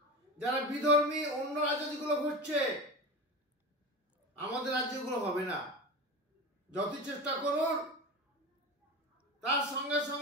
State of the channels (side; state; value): both; normal; correlation 0.27